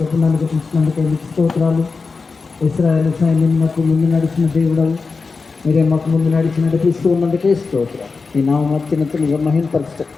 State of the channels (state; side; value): quieter; right; 4.5 dB